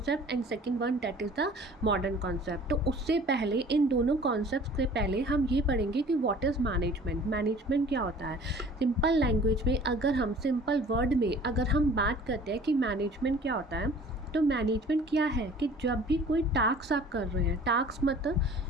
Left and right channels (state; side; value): normal; both; correlation 0.48